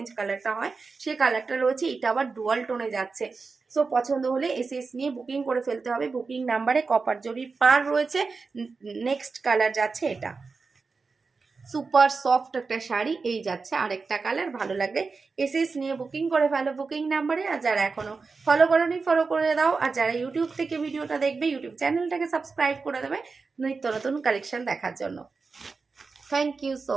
কালারটা হয় সেই কালারটা রয়েছে, এটা আবার ডুয়াল টোনে যাচ্ছে। সো পছন্দ হলে এসএস নিয়ে বুকিং করে ফেলতে হবে। বুকিং নাম্বারে কপার জরির পার রয়েছে। নেক্সট কালার যাচ্ছে এটা, সুপার সফট একটা শাড়ি। এই যাচ্ছে আরেকটা কালার, ভালো লাগলে এসএস নিয়ে বুকিং করে ফেলো বুকিং নাম্বারে। আর যারা এখনো ফলো করোনি ফলো করে দাও, আর যারা ইউটিউব থেকে ভিডিওটা দেখবে ইউটিউব চ্যানেলটাকে সাবস্ক্রাইব করে দেবে নিত্য নতুন কালেকশন দেখার জন্য। Thank you so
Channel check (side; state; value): left; quieter; 4.5 dB